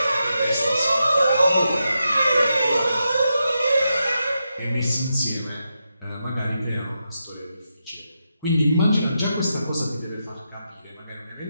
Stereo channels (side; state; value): both; inverted; correlation -0.86